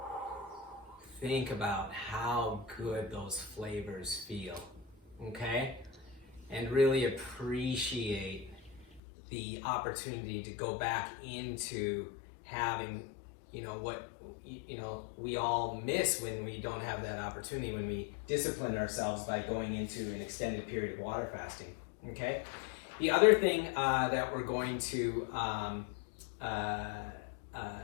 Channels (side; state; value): right; drops out; at 9.0 s